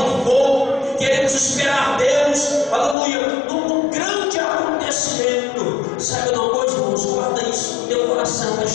fogo. Queremos esperar Deus. Aleluia. Num grande acontecimento. Saiba de uma coisa, irmãos. Guarda isso no teu coração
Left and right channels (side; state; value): right; drops out; at 3.0 s